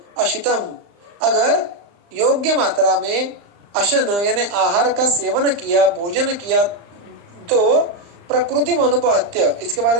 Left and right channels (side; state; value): left; late; 35 ms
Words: अशितम, अगर योग्य मात्रा में अशन यानी आहार का सेवन किया, भोजन किया, तो प्रकृति अनुपहत्य, इसके बारे